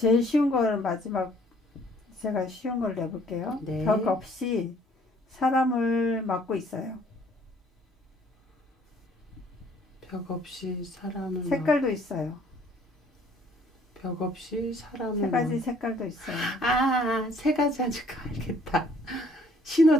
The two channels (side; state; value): both; normal; correlation 0.60